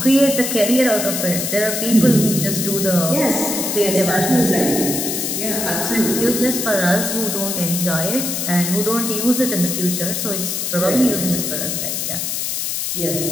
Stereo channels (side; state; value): left; noise; hiss, 2 dB below the sound